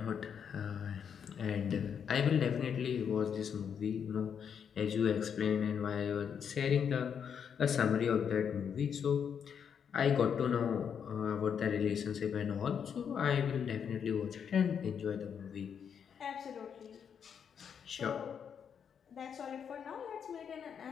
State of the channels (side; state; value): right; quieter; 7.5 dB